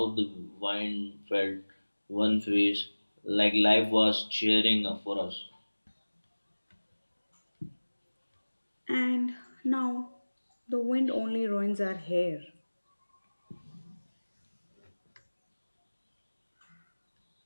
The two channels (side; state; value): both; inverted; correlation -1.00